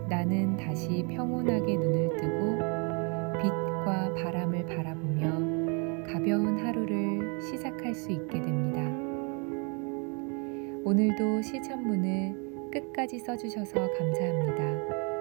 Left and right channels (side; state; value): left; quieter; 35.0 dB